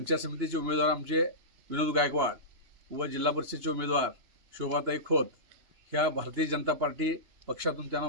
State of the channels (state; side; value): late; left; 2.9 ms